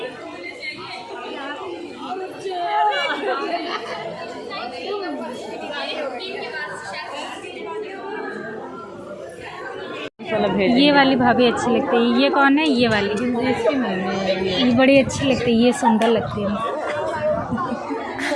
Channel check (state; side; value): identical; both; correlation 1.00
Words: ये वाली भाभी अच्छी लगती है। ये कौन है? ये वाली ये बड़ी अच्छी लगती है। ये सुंदर लगती है।